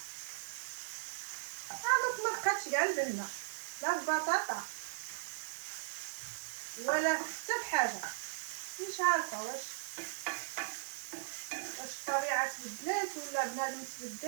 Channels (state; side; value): silent; left; digital silence